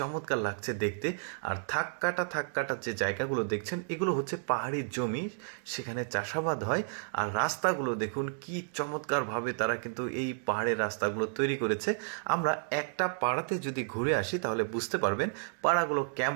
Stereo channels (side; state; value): left; silent; digital silence